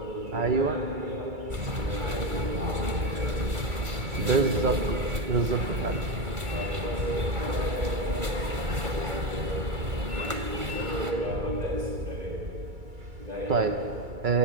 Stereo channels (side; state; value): left; late; 2.3 ms